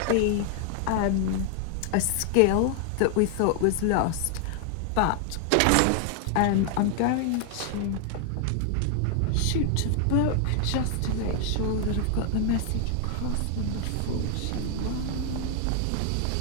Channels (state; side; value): different; both; correlation 0.00